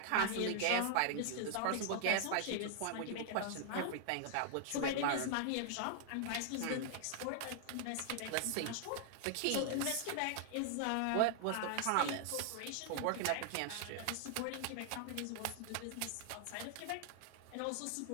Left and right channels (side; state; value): both; different; correlation -0.01